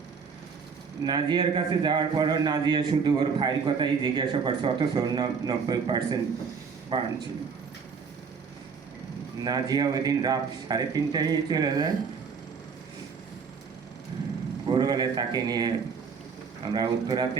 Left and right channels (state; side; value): quieter; left; 5.8 dB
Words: নাজিয়ার কাছে যাওয়ার পরও নাজিয়া শুধু ওর ভাইয়ের কথাই জিজ্ঞাসা করছে, অথচ ওর 90% বার্ন ছিল। নাজিয়া ওই দিন রাত 3:30টায় চলে যায়। ভোরবেলায় তাকে নিয়ে আমরা উত্তরাতে